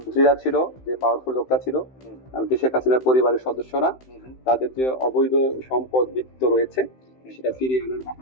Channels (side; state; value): right; late; 16 ms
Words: ছিল, যে পাওয়ারফুল লোকরা ছিল, এমনকি শেখ হাসিনার পরিবারের সদস্যরা, তাদের যে অবৈধ সম্পদ বিত্ত রয়েছে সেটা ফিরিয়ে আনার